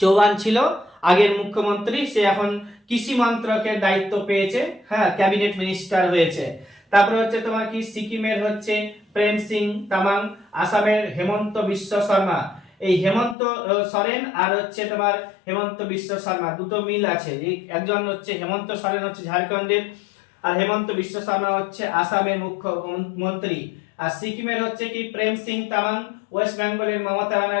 ছিল আগের মুখ্যমন্ত্রী, সে এখন কৃষি মন্ত্রকের দায়িত্ব পেয়েছে, হ্যাঁ, ক্যাবিনেট মিনিস্টার হয়েছে। তারপরে হচ্ছে তোমার কি সিকিমের হচ্ছে প্রেম সিং তামাং, আসামের হেমন্ত বিশ্ব শর্মা। এই হেমন্ত সোরেন আর হচ্ছে তোমার হেমন্ত বিশ্ব শর্মা দুটো মিল আছে। একজন হচ্ছে হেমন্ত সোরেন হচ্ছে ঝাড়খণ্ডের, আর হেমন্ত বিশ্ব শর্মা হচ্ছে আসামের মুখ্যমন্ত্রী। আর সিকিমের হচ্ছে কি প্রেম সিং তামাং, ওয়েস্ট বেঙ্গলের মমতা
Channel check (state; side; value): drops out; right; at 13.4 s